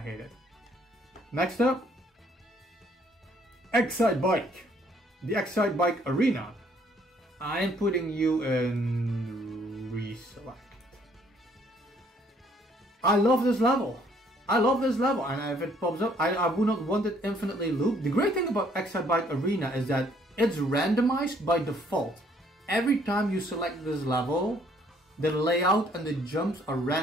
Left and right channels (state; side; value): normal; both; correlation 0.64